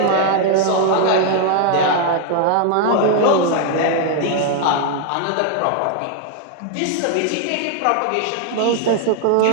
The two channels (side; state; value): both; different; correlation -0.01